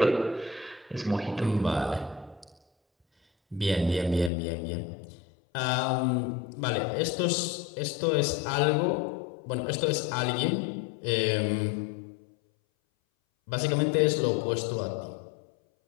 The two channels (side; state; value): right; drops out; at 4.3 s